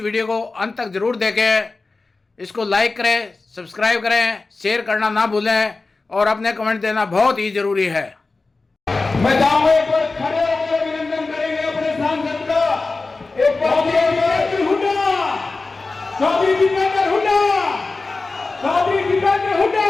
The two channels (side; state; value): right; quieter; 3.7 dB